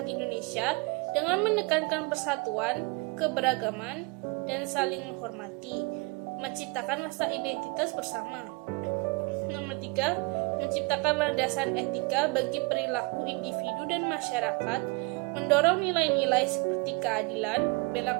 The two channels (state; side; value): quieter; left; 27.4 dB